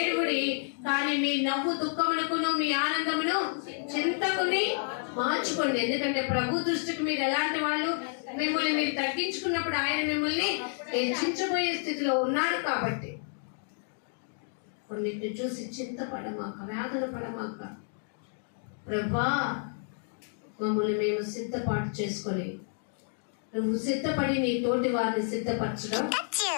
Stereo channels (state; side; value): silent; right; 58 dB below the other